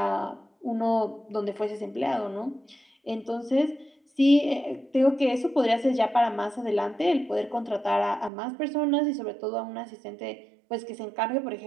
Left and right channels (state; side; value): drops out; left; at 8.3 s